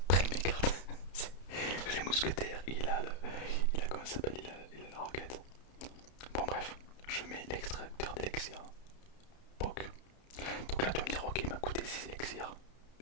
prennent mes cartes. Les mousquetaires, il a comment ça s'appelle, il a la roquette. Bon bref, je mets l'extracteur d'élixir. POC. Donc là tu vas me dire ok il m'a coûté 6 élixirs.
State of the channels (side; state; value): right; late; 31 ms